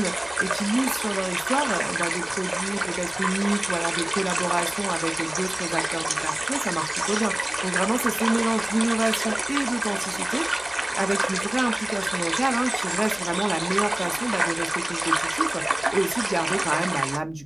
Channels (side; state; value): left; noise; hum, 24 dB below the sound